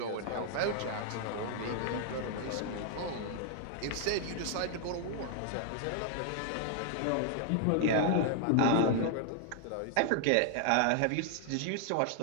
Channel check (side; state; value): both; different; correlation 0.00